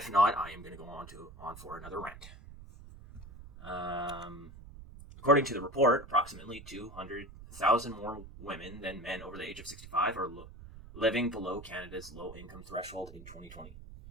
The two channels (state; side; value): noise; right; rumble, 16 dB below the sound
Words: not, I am going to go on for another rant. According to the report, approximately 200,000 more women than men over the age of 65 are living below Canada's low-income threshold in 2020.